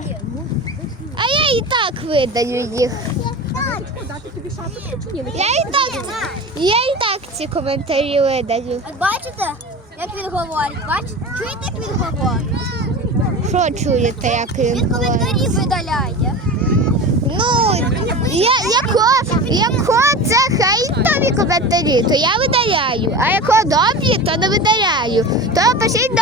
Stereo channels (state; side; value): normal; both; correlation 0.31